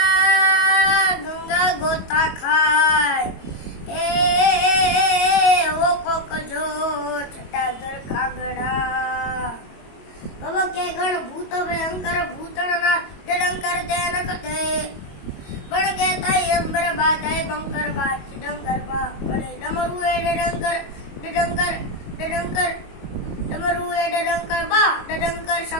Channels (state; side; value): late; right; 22 ms